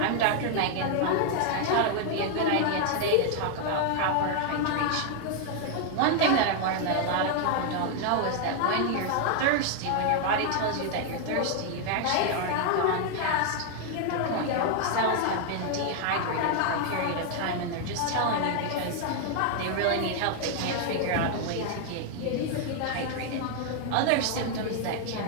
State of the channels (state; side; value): different; both; correlation 0.00